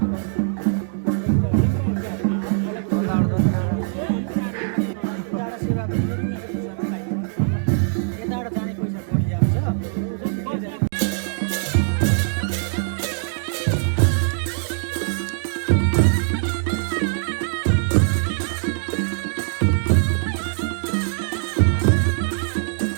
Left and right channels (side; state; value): left; silent; digital silence